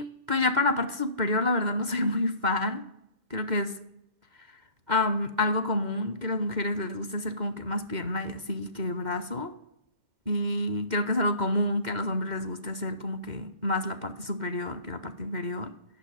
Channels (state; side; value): late; left; 2.1 ms